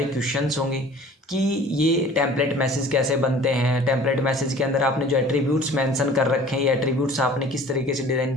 क्वेश्चंस होंगे कि ये टेम्पलेट मैसेज कैसे बनते हैं, टेम्पलेट मैसेज के अंदर आपने जो एट्रीब्यूट्स मेंशन कर रखे हैं, ये एट्रीब्यूट्स आपने किस तरीके से डिज़ाइन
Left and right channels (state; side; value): normal; both; correlation 0.47